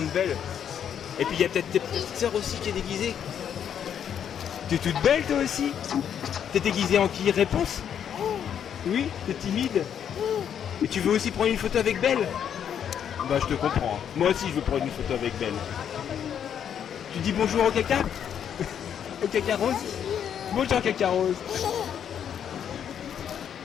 belle. Et puis il y a peut-être tes petites sœurs aussi qui est déguisée. T'es toute belle toi aussi? T'es déguisée en qui? Réponse? Oui? T'es timide? Et tu veux aussi prendre une photo avec Belle? Bah je te comprends. Moi aussi je veux prendre une photo avec Belle. Tu dis bonjour au caca? Au caca rose? Bonjour caca rose.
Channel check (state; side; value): quieter; right; 8.7 dB